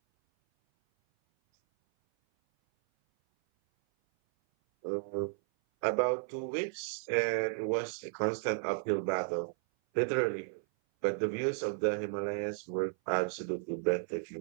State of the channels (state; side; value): silent; left; 55 dB below the other